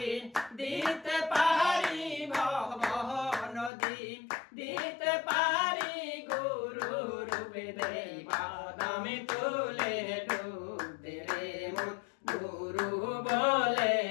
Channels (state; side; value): drops out; right; at 3.7 s